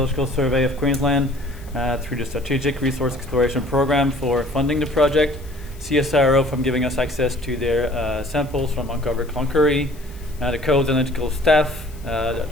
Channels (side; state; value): left; noise; hiss, 24 dB below the sound